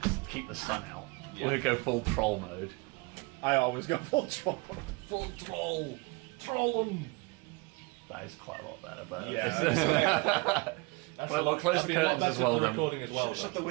keep the sun out. We'll go full troll mode. I always go full troll. Full troll. Troll them. That is quite a lot better, but Yeah. Well, close the curtains as well then. Recording as well. Shut the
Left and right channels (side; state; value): left; quieter; 27.2 dB